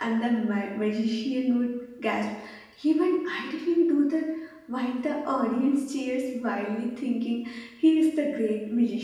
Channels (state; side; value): identical; both; correlation 1.00